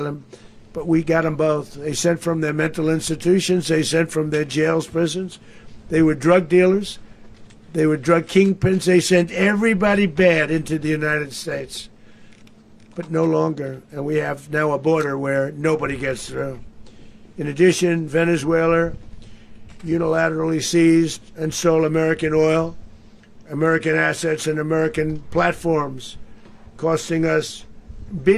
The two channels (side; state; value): both; identical; correlation 1.00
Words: but we got them both. They sent from their mental institutions. They sent from their jails, prisons. They were drug dealers. They were drug kingpins. They sent everybody bad into the United States, but no longer. And we have now a border where nobody gets through. In addition, Venezuela unilaterally seized and stole American oil, American assets, and American platforms, costing us